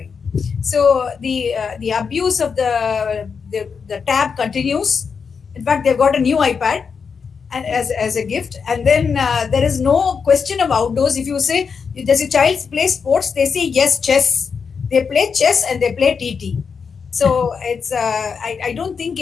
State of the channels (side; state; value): right; quieter; 5.9 dB